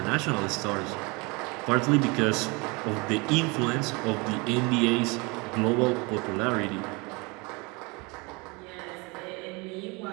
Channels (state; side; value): quieter; left; 27.5 dB